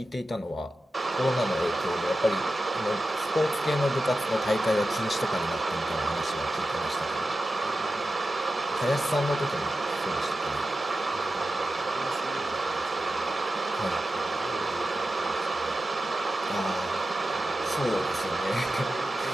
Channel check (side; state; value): both; normal; correlation 0.92